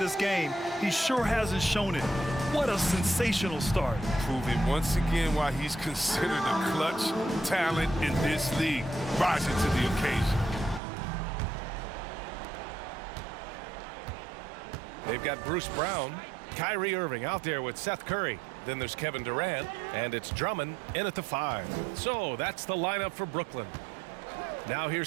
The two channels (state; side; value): drops out; left; at 10.8 s